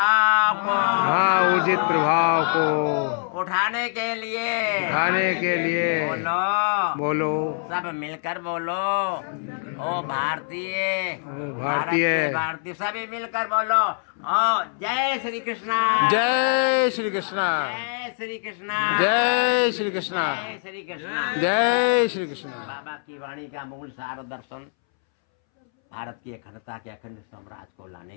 को, ऊर्जित प्रभाव को उठाने के लिए बोलो सब मिलकर बोलो, ओ भारतीय भारतीय सभी मिलकर बोलो, ओ जय श्री कृष्णा, जय श्री कृष्णा, जय श्री कृष्णा, जय श्री कृष्णा, जय श्री कृष्णा। जय श्री कृष्णा। बाबा की वाणी का मूल सार दर्शन भारत की अखंडता के अखंड साम्राज्य को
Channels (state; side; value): silent; right; 63 dB below the other